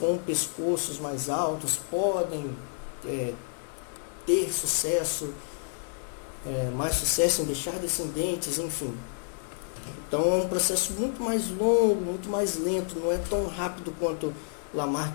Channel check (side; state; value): right; silent; digital silence